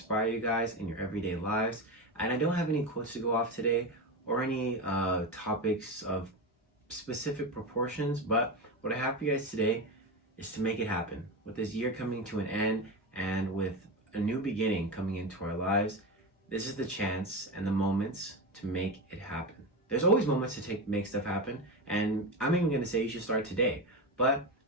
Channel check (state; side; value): normal; both; correlation 0.18